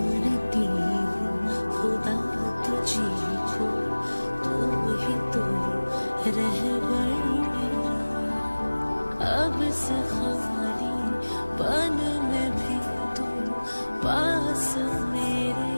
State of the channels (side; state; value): both; inverted; correlation -1.00